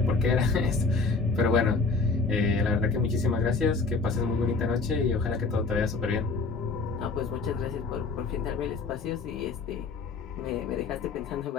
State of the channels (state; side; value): quieter; right; 4.2 dB